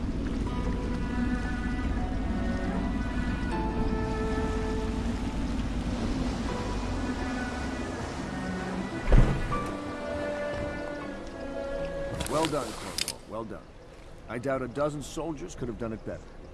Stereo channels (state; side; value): identical; both; correlation 1.00